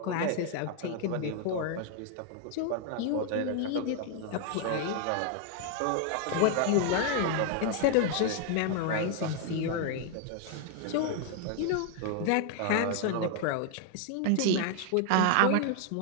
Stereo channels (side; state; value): both; different; correlation 0.00